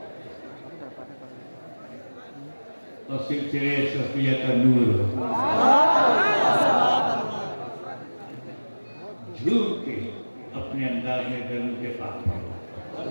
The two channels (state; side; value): inverted; both; correlation -1.00